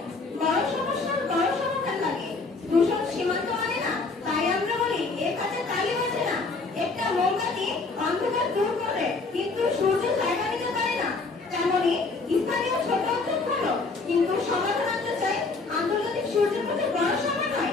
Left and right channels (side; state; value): right; quieter; 3.9 dB